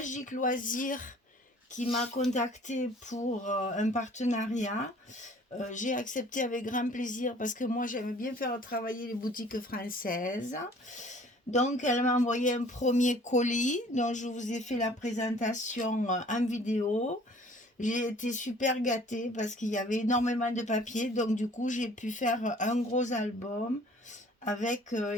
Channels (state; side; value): normal; both; correlation 0.53